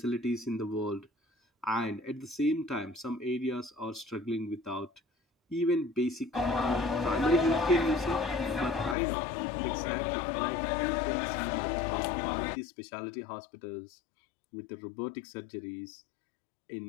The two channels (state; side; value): drops out; right; at 9.0 s